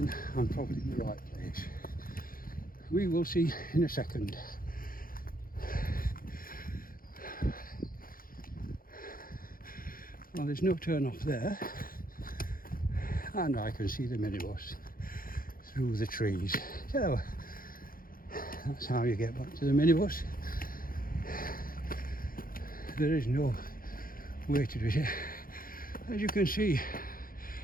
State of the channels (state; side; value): late; right; 0.42 ms